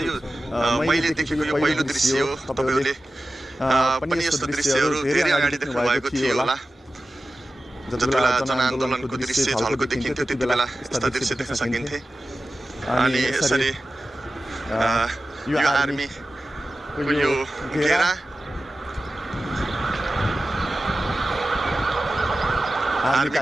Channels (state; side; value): normal; both; correlation 0.94